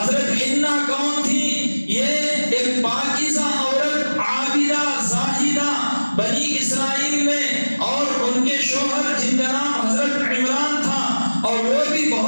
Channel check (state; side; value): inverted; both; correlation -1.00